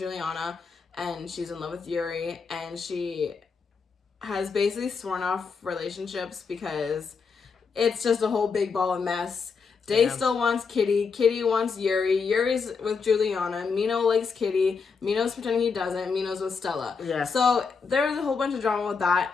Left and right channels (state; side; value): quieter; right; 5.3 dB